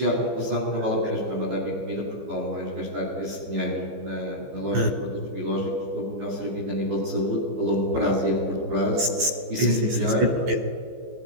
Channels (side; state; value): left; late; 15 ms